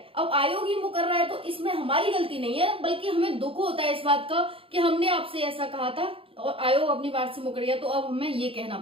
अब आयोग ही मुकर रहा है तो इसमें हमारी गलती नहीं है, बल्कि हमें दुख होता है इस बात का कि हमने आपसे ऐसा कहा था और आयोग अपनी बात से मुकर गया, तो अब हमें ये कहना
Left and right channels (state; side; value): late; left; 0.27 ms